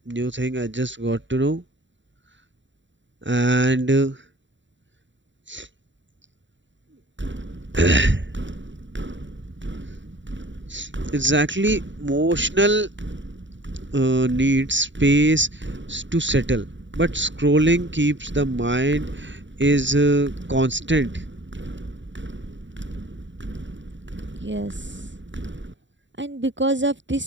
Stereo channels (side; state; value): left; late; 0.54 ms